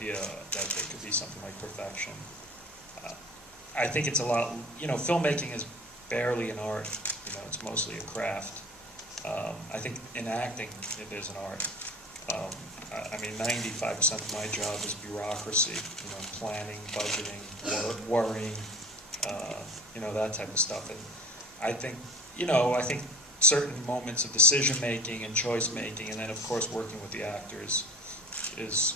that there could be something like perfection. I think it's a lot, you know, filmmaking is barely an art. You know, it's mostly a craft. I think in acting, it is an art. I mean, 95% of my job is bureaucracy, you know, planning, budgeting, worrying, you know, that type of stuff. And I think, you know, certain moments of decision making and choice making, and then of course working with the actors is,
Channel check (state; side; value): normal; both; correlation 0.39